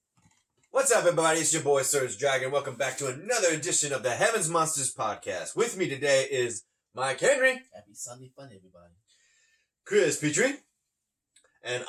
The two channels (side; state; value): both; identical; correlation 1.00